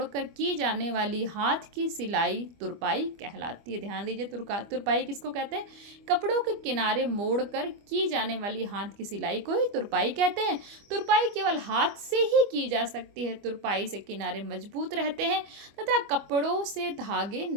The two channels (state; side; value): late; left; 25 ms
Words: की जाने वाली हाथ की सिलाई तुरपाई कहलाती है। ध्यान दीजिए, तुरपाई किसको कहते हैं, कपड़ों के किनारे मोड़कर की जाने वाली हाथ की सिलाई को ही तुरपाई कहते हैं। तुरपाई केवल हाथ से ही की जा सकती है। तुरपाई से किनारे मजबूत रहते हैं तथा कपड़ों से धागे